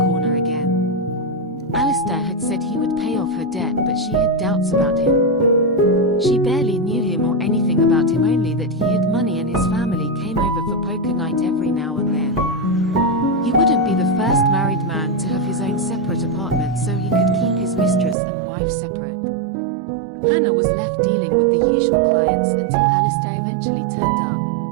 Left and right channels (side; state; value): left; drops out; at 18.2 s